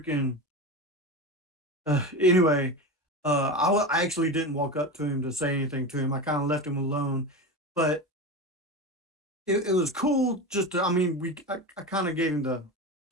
anyway, I actually didn't walk up to him to say anything to him. I kind of left him alone, but it was cool. Just to, I mean, I kind of gave him the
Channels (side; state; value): both; normal; correlation 0.24